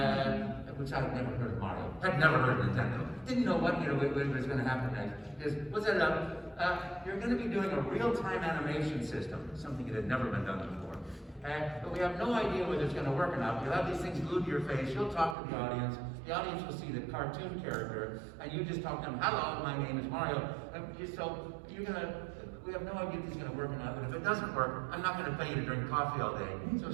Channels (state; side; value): drops out; left; at 15.4 s